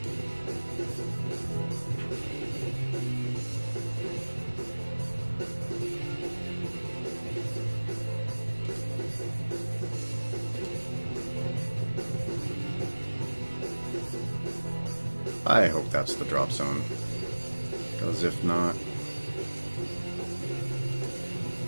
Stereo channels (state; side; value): inverted; both; correlation -1.00